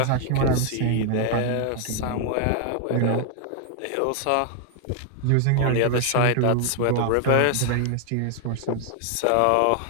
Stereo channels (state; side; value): different; both; correlation 0.00